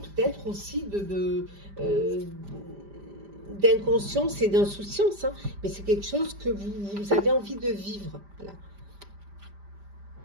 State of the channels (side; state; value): left; late; 5.0 ms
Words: aussi d'inconscience et d'insouciance, hein, mais c'est quelque chose que vous avez envie de vivre. Voilà.